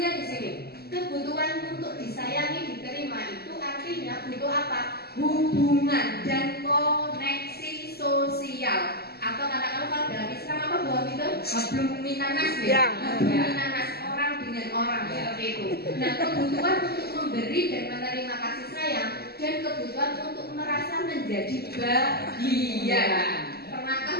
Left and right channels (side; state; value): right; late; 0.46 ms